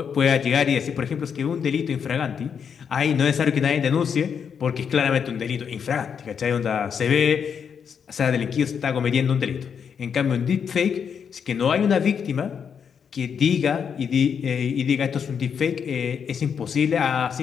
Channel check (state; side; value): quieter; right; 7.1 dB